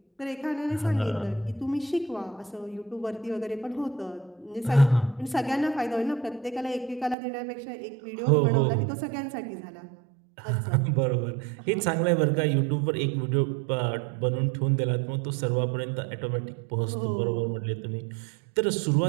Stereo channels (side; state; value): left; drops out; at 7.2 s